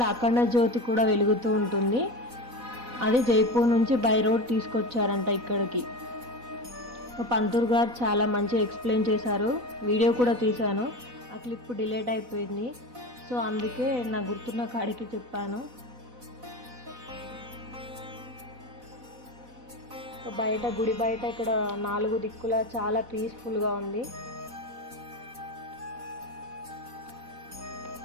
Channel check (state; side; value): late; left; 4.1 ms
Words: అఖండ జ్యోతి కూడా వెలుగుతూ ఉంటుంది. అది జైపూర్ నుంచి బై రోడ్ తీసుకొచ్చారంట ఇక్కడికి. పంతులు గారు చాలా మంచిగా ఎక్స్ప్లెయిన్ చేశారు. వీడియో కూడా తీశాను. ఆ క్లిప్ డిలీట్ అయిపోయింది. సో అందుకే నా గుర్తున్న కాడికి చెప్పాను. బయట గుడి బయట ఇక్కడ 4 దిక్కుల చాలా పీస్ఫుల్గా ఉంది.